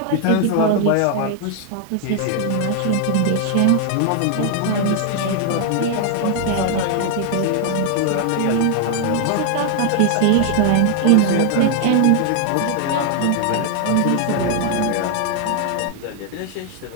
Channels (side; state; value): both; different; correlation 0.00